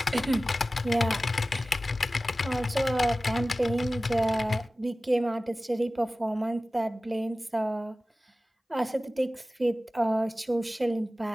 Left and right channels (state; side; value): normal; both; correlation 0.96